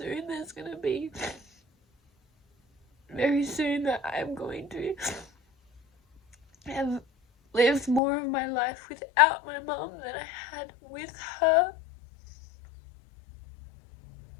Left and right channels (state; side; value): drops out; right; at 8.0 s